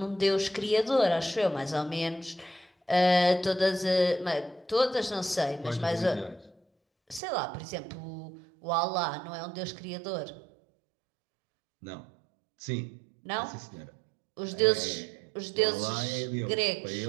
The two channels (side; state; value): left; drops out; at 7.2 s